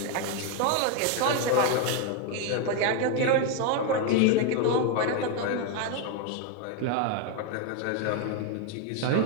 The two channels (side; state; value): both; different; correlation 0.01